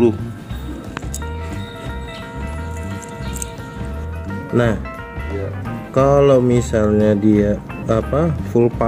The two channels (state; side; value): identical; both; correlation 1.00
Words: Nah, kalau misalnya dia full